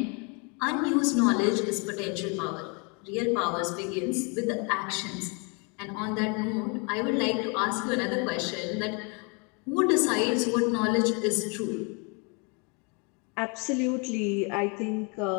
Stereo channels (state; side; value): quieter; right; 33.2 dB